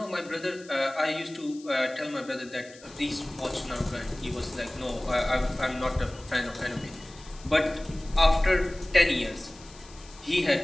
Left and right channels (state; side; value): noise; left; hiss, 21 dB below the sound